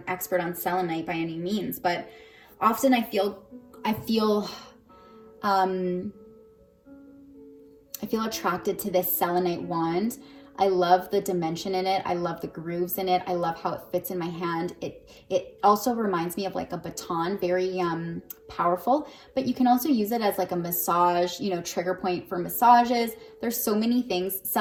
expert on selenite by any means, but often I feel attracted to this selenite wand. I love the dimension in it. I love the grooves in it. I love how it fits in my hand. It also reminds me of like a baton, very powerful, but you can also use it as like a massage, you know, trigger point for massages, There's so many things.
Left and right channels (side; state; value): both; identical; correlation 1.00